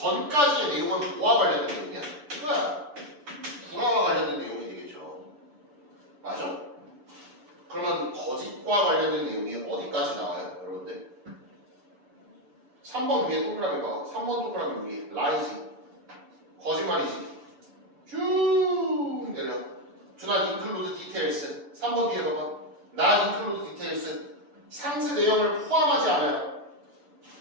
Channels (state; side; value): late; left; 6.9 ms